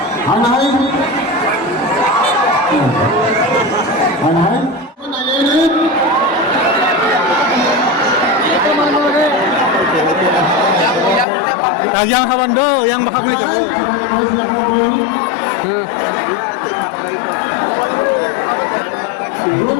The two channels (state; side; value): drops out; right; at 11.2 s